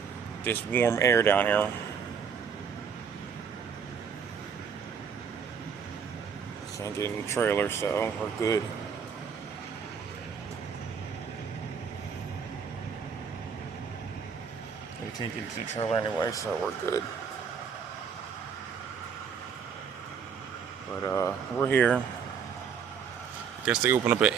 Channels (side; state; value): left; quieter; 6.7 dB